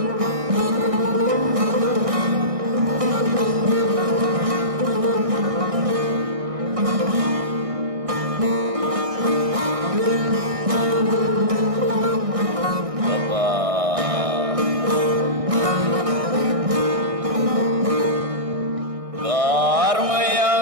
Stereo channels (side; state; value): left; late; 1.6 ms